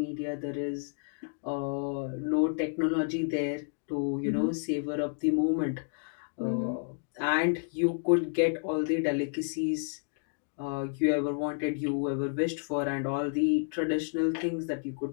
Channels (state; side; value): silent; right; digital silence